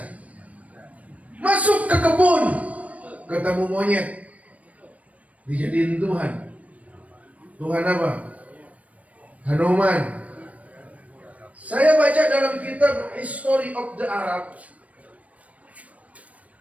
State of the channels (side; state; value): left; late; 0.068 ms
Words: Masuk ke kebun, ketemu monyet. Dijadiin Tuhan. Tuhan apa? Hanuman. Saya baca dalam kitab History of the Arab,